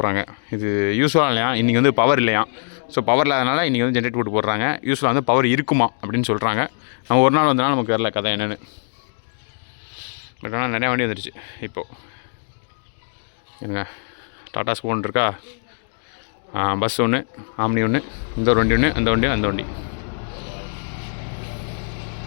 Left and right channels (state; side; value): silent; right; digital silence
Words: இது யூஸ்வலாக இல்லையா, இன்றைக்கி வந்து பவர் இல்லையா. ஸோ பவர் இல்லாதனால இன்றைக்கி வந்து ஜென்ரேட் போட்டு போடுறாங்க. யூஸ்வலாக வந்து பவர் இருக்குமா அப்படின்னு சொல்கிறாங்க. நம்ம ஒரு நாள் வந்தனால நமக்கு வரல கதை என்னென்னு. பட் ஆனால் நிறையா வண்டி வந்துடுச்சு இப்போது. என்னங்க டாடா ஸ்கூன் இருக்கா, பஸ் ஒன்று, ஆம்னி ஒன்று, இந்த ஒரு வண்டி ஒன்று, அந்த வண்டி.